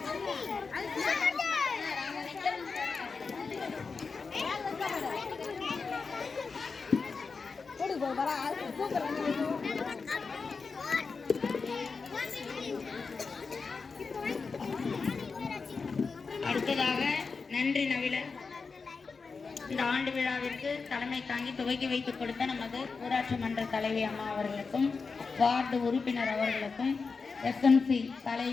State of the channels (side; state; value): right; quieter; 4.7 dB